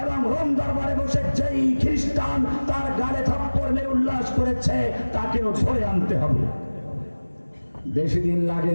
তাকেও ধরে আনতে হবে। বেশি দিন লাগে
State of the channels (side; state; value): both; inverted; correlation -1.00